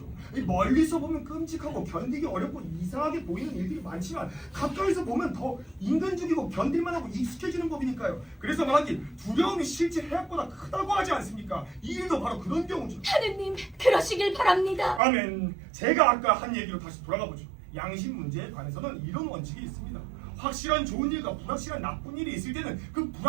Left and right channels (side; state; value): left; drops out; at 15.0 s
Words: 이 멀리서 보면 끔찍하고 견디기 어렵고 이상하게 보이는 일들이 많지만 가까이서 보면 더 인간적이고 견딜만하고 익숙해지는 법이니까요. 그래서 말하기 두려움이 실제 해악보다 크다고 하지 않습니까? 이 일도 바로 그런 경우죠. 하느님, 그러시길 바랍니다. 아멘. 제가 아까 한 얘기로 다시 돌아가 보죠. 양심 문제에 관해서는 이런 원칙이 있습니다. 확실한 좋은 일과 불확실한 나쁜 일이 있을 때는 그